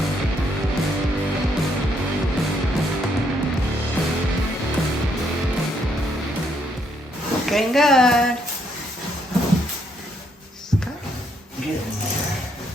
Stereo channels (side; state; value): both; normal; correlation 0.73